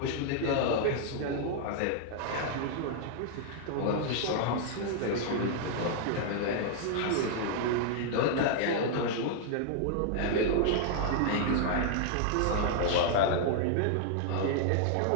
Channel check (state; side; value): different; both; correlation -0.01